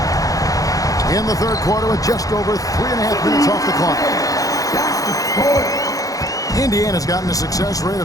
In the third quarter with just over 3.5 minutes off the clock. Indiana's gotten a success rate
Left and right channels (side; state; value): right; late; 0.17 ms